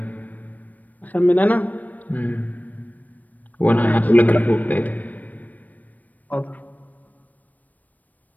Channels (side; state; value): right; late; 0.080 ms